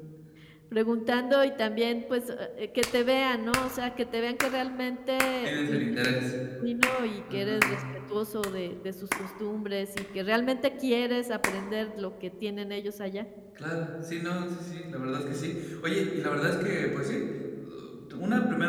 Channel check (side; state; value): both; identical; correlation 1.00